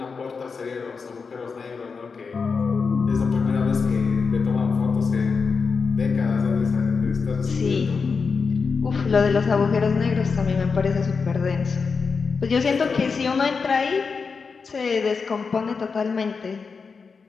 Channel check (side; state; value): right; quieter; 5.1 dB